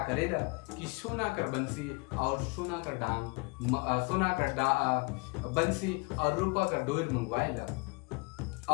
करेला कि सोना कर बंसी और सोना कर डांग, सोना कर बंसी और रूपा कर डोर मंगवाएला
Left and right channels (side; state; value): right; quieter; 29.7 dB